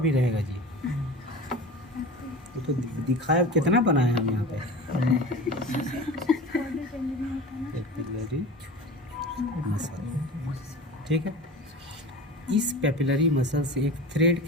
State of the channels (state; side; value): normal; both; correlation 0.34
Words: रहेगा जी। तो दिखाया कितना बनाया हम यहाँ पे। पैपिलरी मसल, ठीक है। इस पैपिलरी मसल से एक थ्रेड